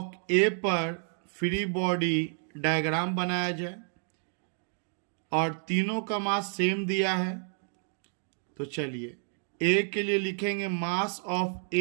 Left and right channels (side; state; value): left; silent; 58 dB below the other